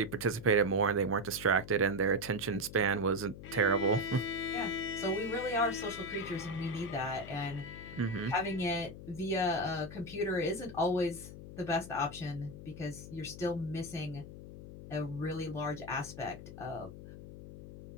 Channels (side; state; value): left; noise; hum, 13 dB below the sound